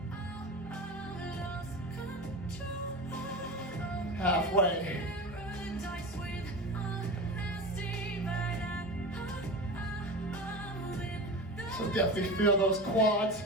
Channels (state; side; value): normal; both; correlation 0.28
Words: Halfway. So definitely feel those quads.